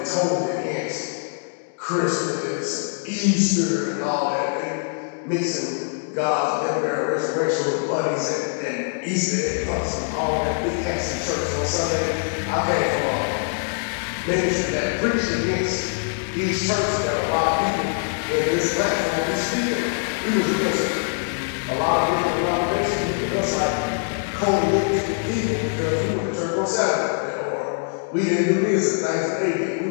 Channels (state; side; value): silent; right; digital silence